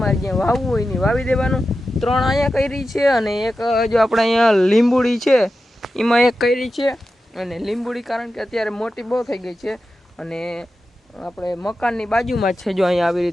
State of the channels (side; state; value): both; normal; correlation 0.92